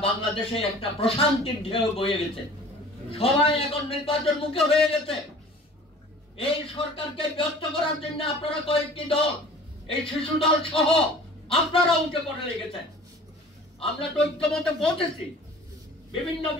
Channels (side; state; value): both; normal; correlation 0.46